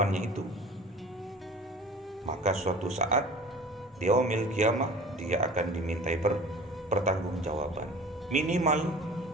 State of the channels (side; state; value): both; normal; correlation 0.43